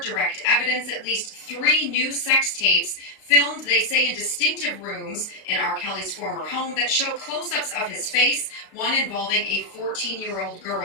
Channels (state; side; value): late; right; 34 ms